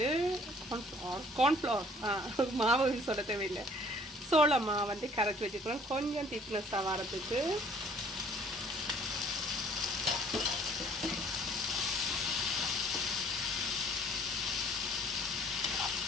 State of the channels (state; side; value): normal; both; correlation 0.57